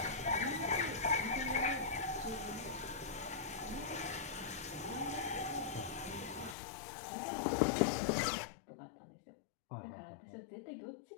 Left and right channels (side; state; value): right; drops out; at 6.6 s